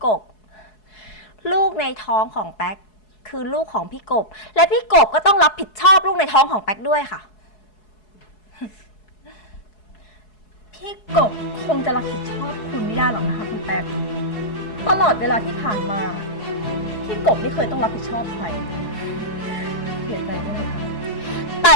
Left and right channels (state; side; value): late; right; 4.7 ms